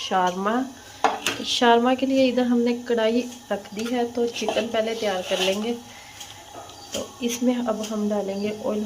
शारमा के लिए इधर हमने कढ़ाई रख दी है, तो चिकन पहले तैयार कर लेंगे। तो इसमें अब हम डालेंगे, ऑयल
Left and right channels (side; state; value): both; identical; correlation 1.00